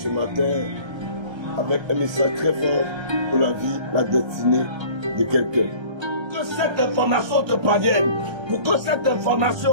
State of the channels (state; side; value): late; left; 1.3 ms